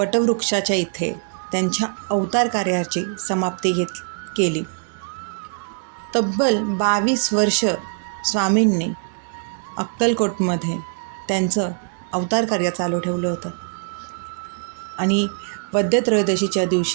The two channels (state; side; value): silent; left; 64 dB below the other